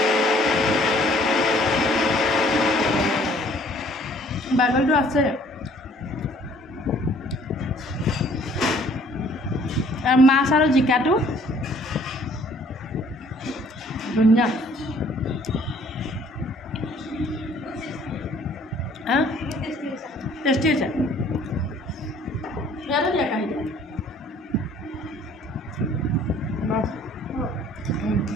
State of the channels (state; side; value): normal; both; correlation 0.57